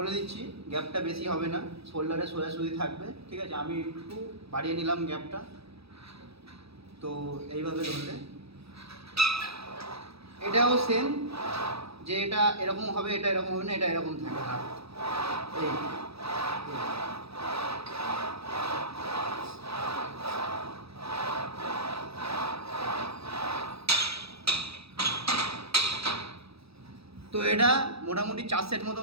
দিচ্ছি, গ্যাপটা বেশি হবে না, শোল্ডারে সোজাসুজি থাকবে, ঠিক আছে? আমি একটু বাড়িয়ে নিলাম গ্যাপটা। তো এইভাবে ধরলে এটাও সেম, যে এটা এরকম হবে, এটা এরকম হবে না, এটা এরকম থাকে হাত। এই তো এটা মোটামুটি 4 সেট মতো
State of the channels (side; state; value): left; late; 0.77 ms